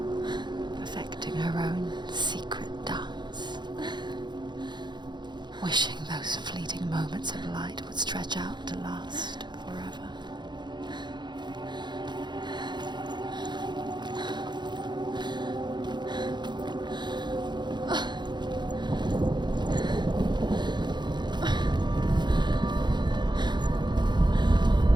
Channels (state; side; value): late; left; 0.21 ms